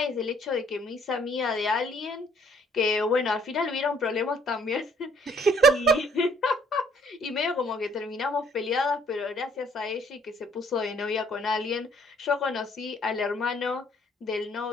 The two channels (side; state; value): both; normal; correlation 0.63